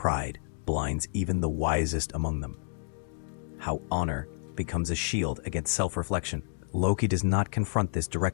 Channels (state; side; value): silent; right; digital silence